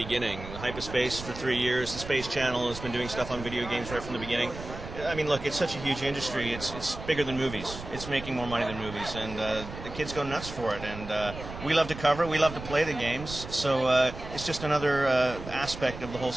HypaSpace for 3 years. The Space Channel has been doing stuff on video games right from the beginning. I mean, look, it's such a huge industry. It's bigger than movies. It's making more money than movies, and the kids go nuts for it. And we love to cover it. We love to play the games. So it's just another aspect of the whole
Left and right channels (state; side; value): noise; right; rumble, 11 dB below the sound